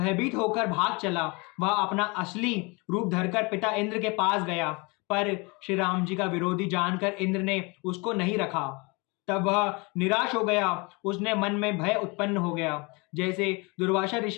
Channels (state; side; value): quieter; right; 28.3 dB